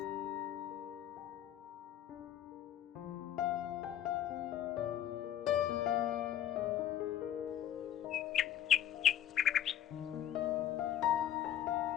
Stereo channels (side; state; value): right; quieter; 11.4 dB